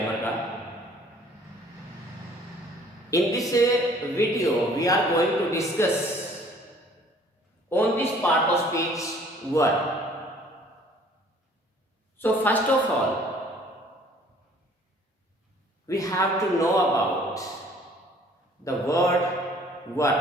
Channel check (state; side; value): normal; both; correlation 0.56